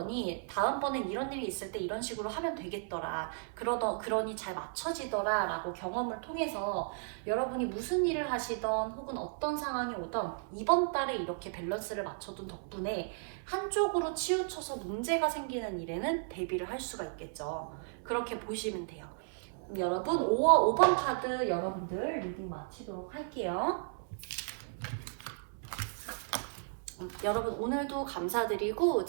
다음번엔 이런 일이 있을 때 이런 식으로 하면 되겠더라 그러니 잘 맞춰지더라 라고 경험을 통해서 여러분이 무슨 일을 하시던 혹은 어떤 상황이 오던 이번 달에 이렇게 밸런스를 맞춰둔 덕분에 한쪽으로 치우쳐서 문제가 생기는 일에는 대비를 할 수가 있겠죠. 그렇게 보시면 돼요. 여러분 5번 카드 여러분들 리딩 마치도록 할게요. 여러분 오늘도 감사드리고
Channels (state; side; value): silent; left; 55 dB below the other